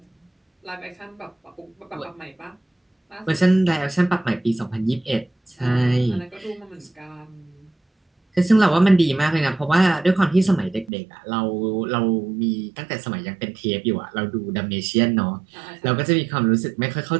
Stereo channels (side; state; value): left; drops out; at 10.9 s